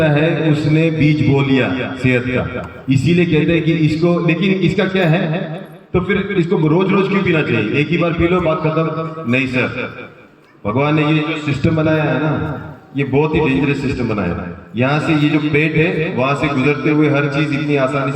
है उसने बीज बो लिया सेहत का। इसीलिए कहते हैं कि इसको, लेकिन इसका क्या है, तो फिर इसको रोज रोज क्यों पीना चाहिए? एक ही बार पी लो, बात खत्म। नहीं सर, भगवान ने ये जो सिस्टम बनाया है ना, ये बहुत ही डेंजरस सिस्टम बनाया है। यहाँ से ये जो पेट है वहां से गुजरते हुए हर चीज इतनी आसानी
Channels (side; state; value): both; identical; correlation 1.00